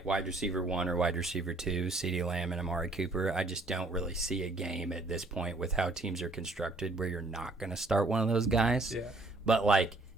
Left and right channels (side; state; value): left; quieter; 3.0 dB